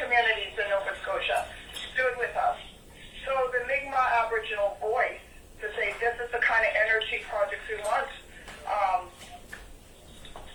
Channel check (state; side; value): identical; both; correlation 1.00